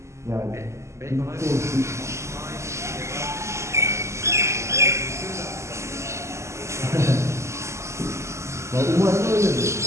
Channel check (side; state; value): left; late; 0.13 ms